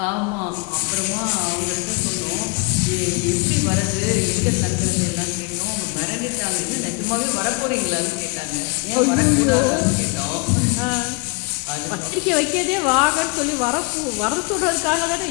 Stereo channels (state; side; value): quieter; right; 33.1 dB